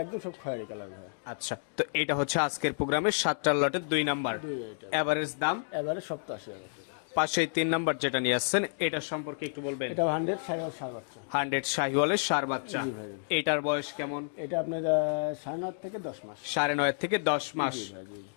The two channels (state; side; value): silent; right; digital silence